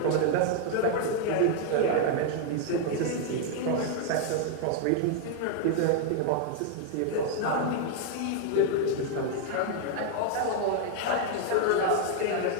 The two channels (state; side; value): different; both; correlation 0.00